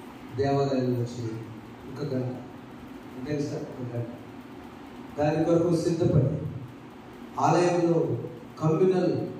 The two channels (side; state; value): both; identical; correlation 1.00